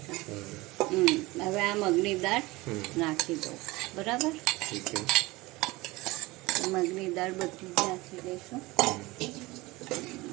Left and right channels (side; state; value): left; quieter; 21.3 dB